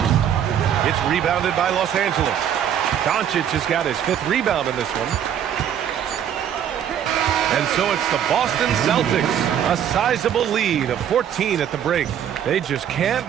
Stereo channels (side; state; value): left; quieter; 9.4 dB